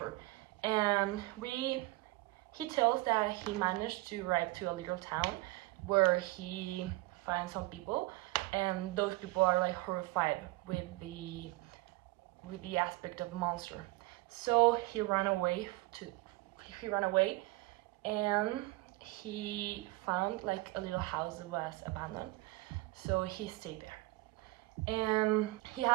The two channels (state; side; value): quieter; left; 20.4 dB